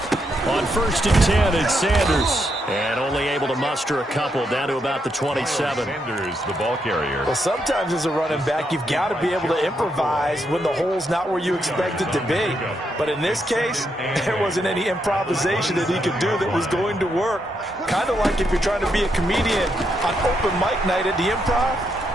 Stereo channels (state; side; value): normal; both; correlation 0.79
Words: On 1st and 10, it's Sanders. And only able to muster a couple down to about the 27. Sanders, the ball carrier. Well, sometimes as a running back, you've got to be able to improvise when the hole's not where you expect it to be. But in this case, there wasn't any improvisation that he could do that was going to work. Kind of like if you're trying to be a comedian on open mic night at the Improv